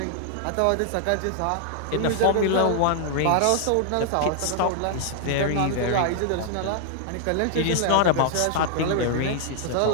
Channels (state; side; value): different; both; correlation 0.00